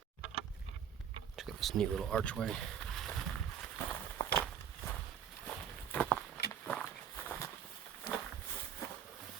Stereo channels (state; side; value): quieter; left; 8.5 dB